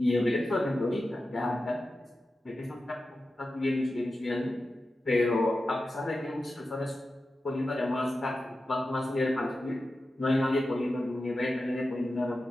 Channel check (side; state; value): both; normal; correlation 0.92